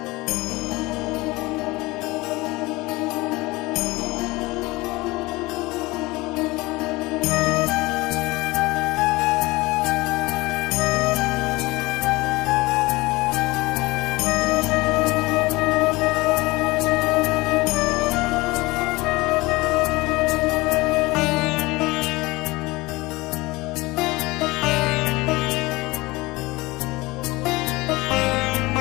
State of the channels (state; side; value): quieter; right; 21.7 dB